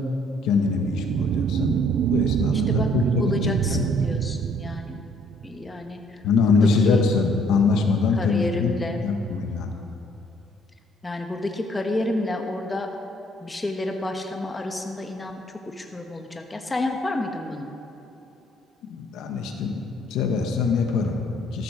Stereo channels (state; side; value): normal; both; correlation 0.63